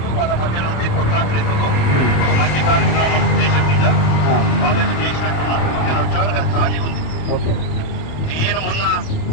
వాళ్ళ మధ్య నుండి కొట్లాడలేదు. ఒక మంచి కార్యక్రమం ఉద్దేశం మీద వాళ్ళకి చేసినట్టున్నారు. నేను వచ్చేవరకు అది ఖాళీ ఉంది. ఓకే, నేను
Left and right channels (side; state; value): right; late; 27 ms